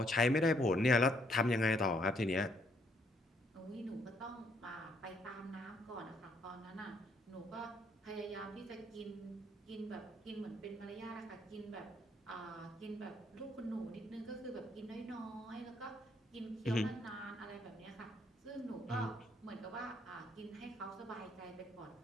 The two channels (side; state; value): both; normal; correlation 0.69